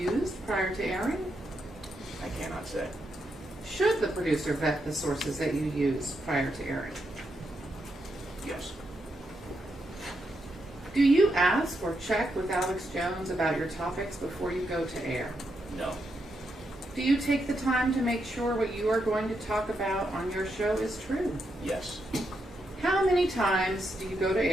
prior to airing? I cannot say. Should the producer vet the sources that you use prior to airing? Yes. Do you ask or check with Alex Jones about your topics before you go to air? No. Do you take the time to make sure what you are going to talk about on your show is true? Yes. How many times do you go to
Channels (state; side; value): normal; both; correlation 0.82